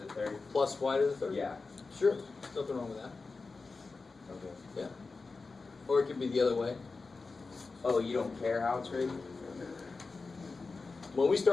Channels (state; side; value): quieter; right; 4.1 dB